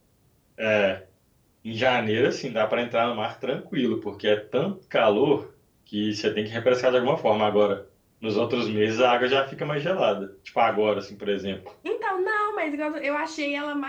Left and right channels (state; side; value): identical; both; correlation 1.00